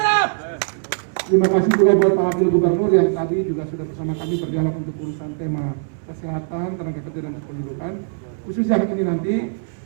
Terima kasih juga buat Pak Wakil Gubernur yang tadi juga sudah bersama kami berdialog untuk urusan tema kesehatan, tenaga kerja dan kependudukan. Khusus yang ini nanti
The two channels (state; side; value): silent; left; 65 dB below the other